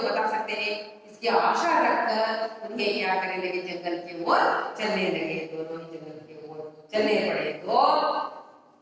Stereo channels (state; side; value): identical; both; correlation 1.00